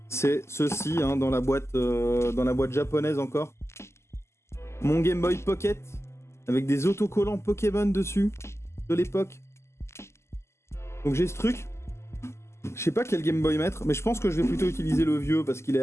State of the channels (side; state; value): right; late; 0.13 ms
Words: c'est ceci, hein, dans la boîte japonaise encore. Mon Game Boy Pocket, avec des autocollants Pokémon dessus, de l'époque. Donc j'ai ce truc. Je sais pas quel Game Boy mettre, mais je pense que je vais plutôt utiliser le vieux parce qu'il est